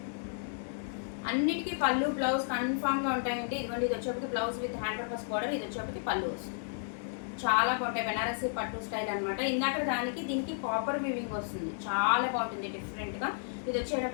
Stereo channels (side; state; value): right; silent; digital silence